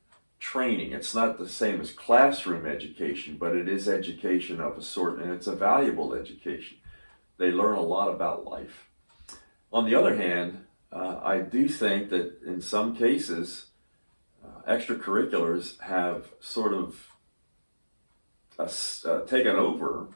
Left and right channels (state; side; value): inverted; both; correlation -1.00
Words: training. It's not the same as classroom education, but it is education of a sort, and it's a valuable education. They learn a lot about life. On the other hand, I do think that in some cases, extracurriculars have sort of taken over